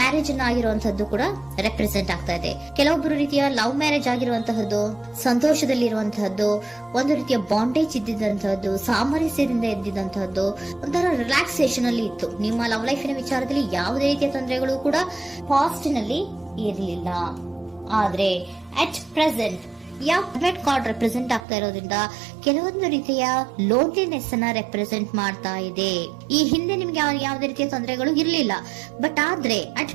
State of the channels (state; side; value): drops out; left; at 21.4 s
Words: ಅನ್ನ ಆಗಿರುವಂತದ್ದು ಕೂಡ ರೆಪ್ರೆಸೆಂಟ್ ಆಗ್ತಾ ಇದೆ. ಕೆಲವೊಬ್ರು ರೀತಿಯ ಲವ್ ಮ್ಯಾರೇಜ್ ಆಗಿರುವಂತಹದ್ದು, ಸಂತೋಷದಲ್ಲಿರುವಂತಹದ್ದು, ಒಂದು ರೀತಿಯ ಬಾಂಡೇಜ್ ಇದ್ದಿದ್ದಂತಹದ್ದು, ಸಾಮರಸ್ಯದಿಂದ ಇದ್ದಿದ್ದಂತಹದ್ದು, ಒಂಥರ ರಿಲ್ಯಾಕ್ಸೇಷನ್ ಅಲ್ಲಿ ಇತ್ತು. ನಿಮ್ಮ ಲವ್ ಲೈಫಿನ ವಿಚಾರದಲ್ಲಿ ಯಾವುದೇ ರೀತಿಯ ತೊಂದರೆಗಳು ಕೂಡ ಪಾಸ್ಟ್ ನಲ್ಲಿ ಇರಲಿಲ್ಲ. ಆದ್ರೆ ಅಟ್ ಪ್ರೆಸೆಂಟ್ ಯಾವ್ಮೆಟ್ ಕಾರ್ಡ್ ರೆಪ್ರೆಸೆಂಟ್ ಆಗ್ತಾ ಇರೋದ್ರಿಂದ ಕೆಲವೊಂದು ರೀತಿಯ ಲೋನ್ಲಿನೆಸ್ ಅನ್ನ ರೆಪ್ರೆಸೆಂಟ್ ಮಾಡ್ತಾ ಇದೆ. ಈ ಹಿಂದೆ ನಿಮ್ಗೆ ಯಾವುದೇ ರೀತಿಯ ತೊಂದರೆಗಳು ಇರಲಿಲ್ಲ, ಬಟ್ ಆದ್ರೆ ಅಟ್